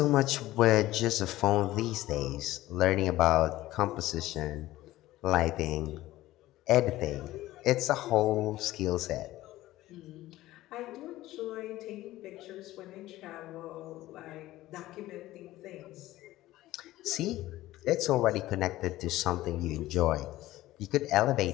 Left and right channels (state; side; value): quieter; right; 16.2 dB